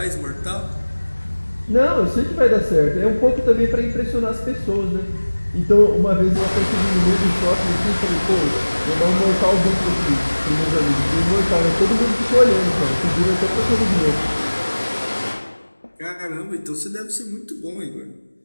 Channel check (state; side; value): inverted; both; correlation -1.00